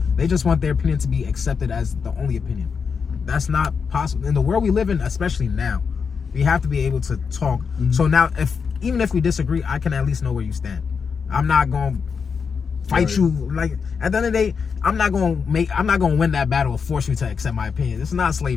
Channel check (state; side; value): quieter; right; 5.9 dB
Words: They just want their opinion to be accepted as the only opinion. That's not possible. In the world we live in, especially now, we have to be able to talk. So now, even if we disagree, I can at least know where you stand. I'm not going to fight you. Like, at the end of the day, I'm not going to win that battle or force you to accept my opinion. It's not